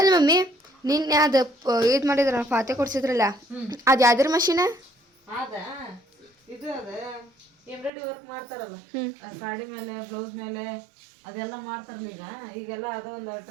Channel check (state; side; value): drops out; left; at 7.9 s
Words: ಮಮ್ಮಿ ನಿನ್ನೆ ಅದು ಇದು ಮಾಡಿದ್ರ ಫಾತೆ ಕೊಡ್ಸಿದ್ರಲ್ಲ, ಅದು ಯಾವ್ದ್ರ ಮಷೀನ? ಇದು ಎಂಬ್ರಾಯ್ಡ್ರಿ ವರ್ಕ್ ಮಾಡ್ತಾರಲ್ಲ ಸಾಡಿ ಮೇಲೆ ಬ್ಲೌಸ್ ಮೇಲೆ ಅದೆಲ್ಲ ಮಾಡ್ತಾರಲ್ಲ ಈಗೆಲ್ಲ ಅದೊಂದು